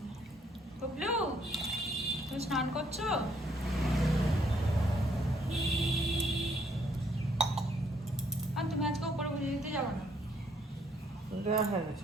বুবলু, তুমি স্নান করছো? আর তুমি আজকে উপরে পুজো দিতে যাবো না? দেওয়া হয়ে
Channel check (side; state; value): both; normal; correlation 0.68